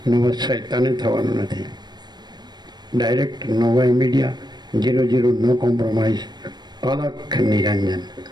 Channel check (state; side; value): late; left; 0.20 ms